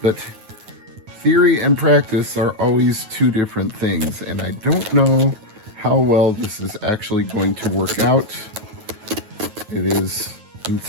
But theory and practice are always two different things, and I don't know how well this is actually going to work out. It is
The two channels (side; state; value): left; late; 9.3 ms